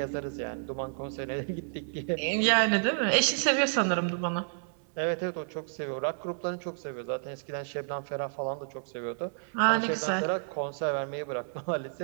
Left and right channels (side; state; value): left; silent; 57 dB below the other